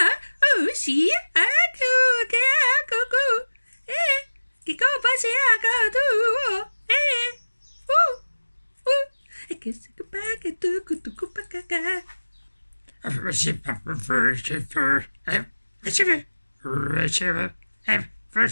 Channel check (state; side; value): inverted; both; correlation -1.00